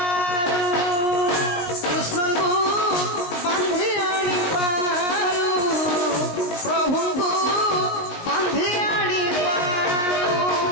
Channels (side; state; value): right; late; 20 ms